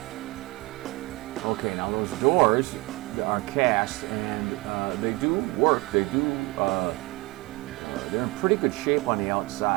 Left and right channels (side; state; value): left; quieter; 23.7 dB